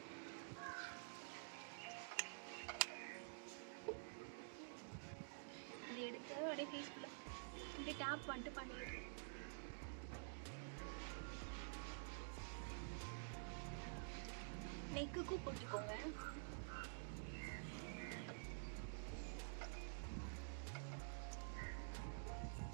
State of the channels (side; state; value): left; silent; digital silence